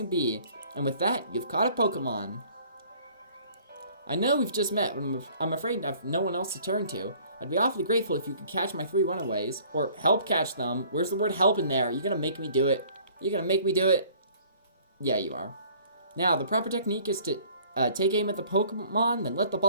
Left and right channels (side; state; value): both; inverted; correlation -0.54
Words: be. And with that, you've caught a Pokemon. I know we've just met, but I'm afraid I have no one else to turn to. I'd be awfully grateful if you could catch my 3 runaways, or help catch them. Where's the word help in there? You're gonna make me do it. You're gonna make me do it. Yeah, you are. Now, the proper technique is to take aim at the Pokemon, then let the